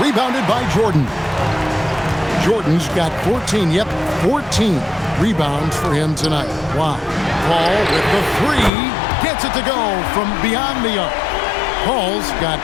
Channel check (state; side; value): drops out; right; at 8.7 s